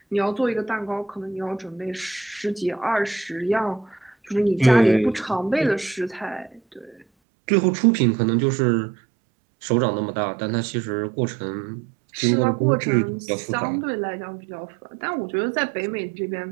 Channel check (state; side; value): drops out; left; at 7.1 s